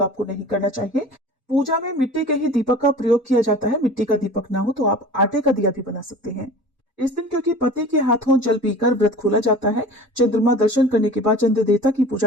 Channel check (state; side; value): normal; both; correlation 0.40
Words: आपको नहीं करना चाहिए। पूजा में मिट्टी के ही दीपक का प्रयोग किया जाता है। मिट्टी का दीपक ना हो तो आप आटे का दिया भी बना सकते हैं। इस दिन क्योंकि पति के हाथों जल पीकर व्रत खोला जाता है, चंद्रमा दर्शन करने के बाद, चंद्र देवता की